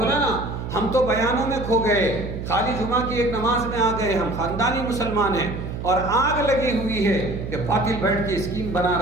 نا، ہم تو بیانوں میں کھو گئے، خالی جمعہ کی ایک نماز میں آ گئے، ہم خاندانی مسلمان ہیں، اور آگ لگی ہوئی ہے کہ باطل بیٹھ کے اسکیم بنا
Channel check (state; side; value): noise; right; hum, 7 dB below the sound